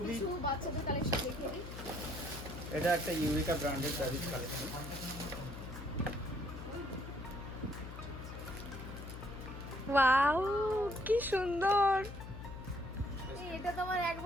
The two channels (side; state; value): left; noise; hum, 10 dB below the sound